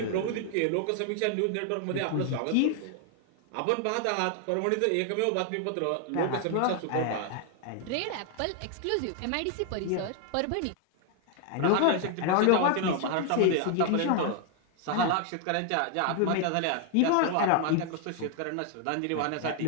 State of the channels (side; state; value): both; different; correlation 0.00